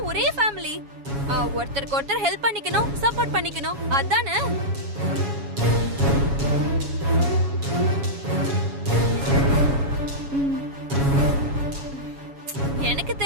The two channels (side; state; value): left; late; 7.2 ms